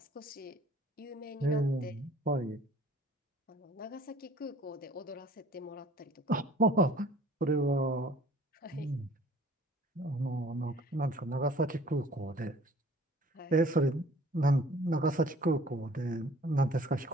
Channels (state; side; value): normal; both; correlation 0.51